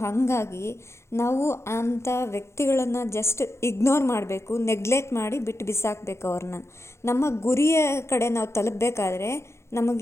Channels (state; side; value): late; right; 0.13 ms